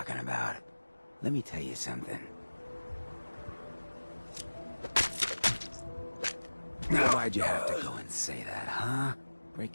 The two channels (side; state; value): both; inverted; correlation -1.00